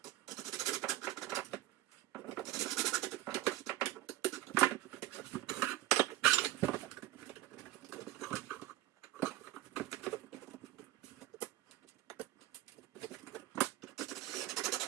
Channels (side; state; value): left; quieter; 15.3 dB